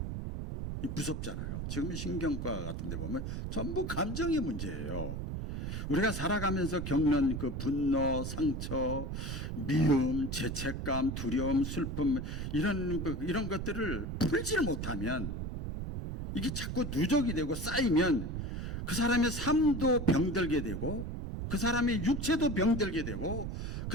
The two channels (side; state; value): right; noise; rumble, 4 dB below the sound